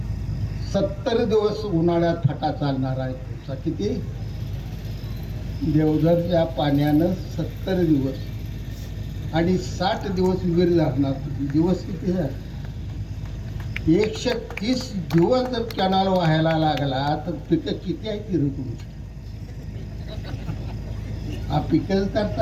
70 दिवस उन्हाळ्यात फाटा चालणार आहे तुमचा. किती? देवधरच्या पाण्यानं 70 दिवस आणि 60 दिवस विहीर धरणार. दिवस किती झाले? 130 दिवस जर कॅनल व्हायला लागला तर पिकं किती आहे ती तुमची? हा पिकं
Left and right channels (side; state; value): both; identical; correlation 1.00